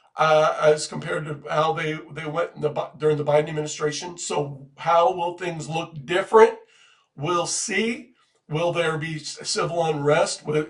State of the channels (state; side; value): identical; both; correlation 1.00